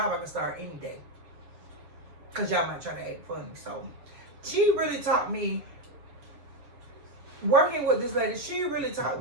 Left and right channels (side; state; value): left; late; 7.2 ms